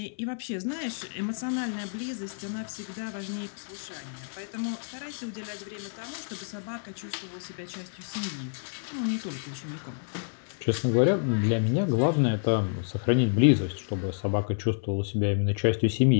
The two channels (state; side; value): silent; right; 59 dB below the other